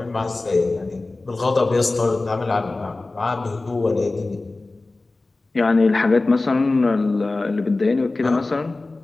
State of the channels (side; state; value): right; quieter; 3.2 dB